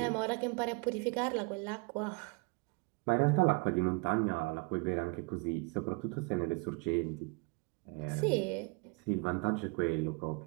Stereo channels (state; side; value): quieter; left; 29.7 dB